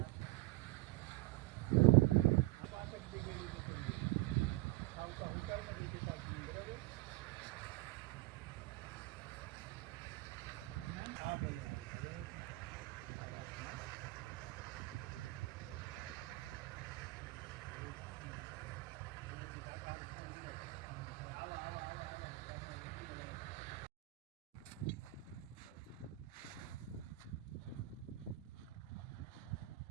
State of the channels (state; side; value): quieter; left; 19.2 dB